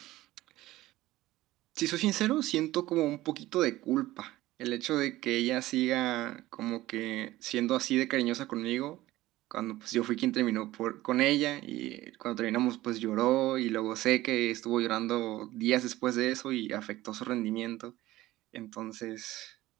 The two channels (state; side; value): quieter; left; 16.8 dB